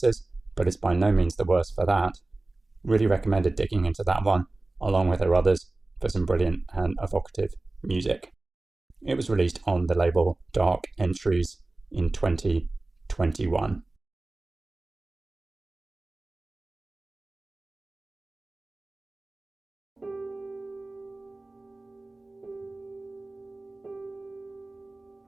but it's by no means the worse for that. Really recommended digging into that one, along with her others, for some brilliant and evocative music. It was released on the label Dark Entries in 2021.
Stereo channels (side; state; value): left; quieter; 3.0 dB